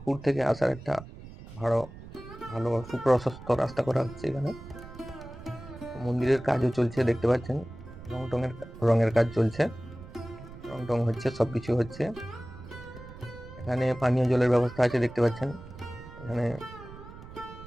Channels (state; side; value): noise; right; rumble, 15 dB below the sound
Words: থেকে আসার একটা ভালো সুপ্রশস্ত রাস্তা করা হচ্ছে এখানে। মন্দিরের কাজও চলছে দেখতে পাচ্ছেন, রঙের কাজ চলছে, রং হচ্ছে, সবকিছু হচ্ছে। এখানে পানীয় জলের ব্যবস্থা আছে দেখতে পাচ্ছেন, এখানে